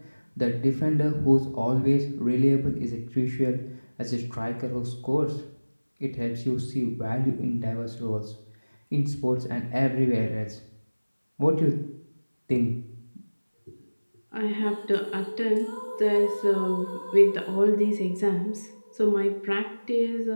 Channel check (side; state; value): both; inverted; correlation -1.00